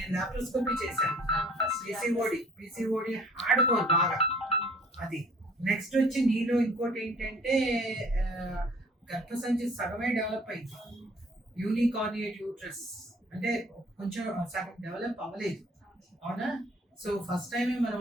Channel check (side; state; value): both; normal; correlation 0.54